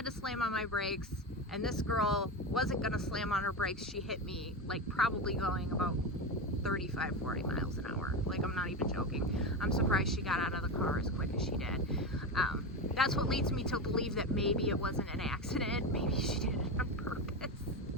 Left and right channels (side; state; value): both; normal; correlation 0.18